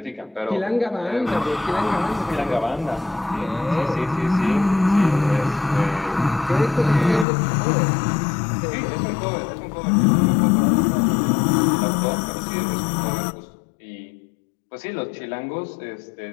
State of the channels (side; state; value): right; drops out; at 7.2 s